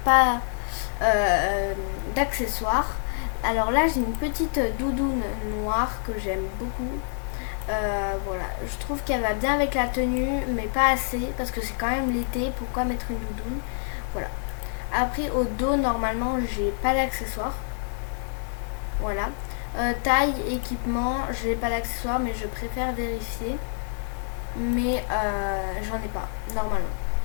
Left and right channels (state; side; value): silent; right; 60 dB below the other